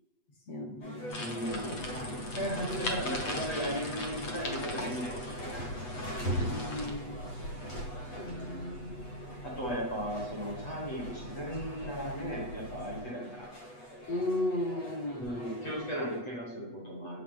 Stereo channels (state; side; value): late; right; 8.1 ms